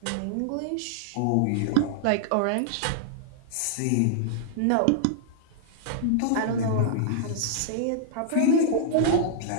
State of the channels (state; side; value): different; both; correlation -0.01